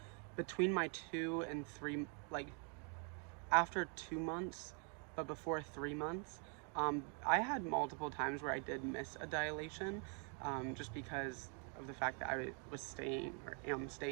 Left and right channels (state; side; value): quieter; left; 39.9 dB